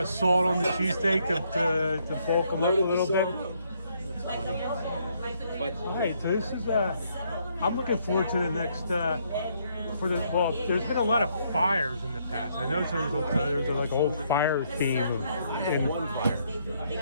salt on the cheesesteak to bulk them up a little bit. But Alright, so this is I'm looking forward to the next there's been a lot of fires in the past. I noticed there was like a whole fire theme in one fire.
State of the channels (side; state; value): both; inverted; correlation -0.71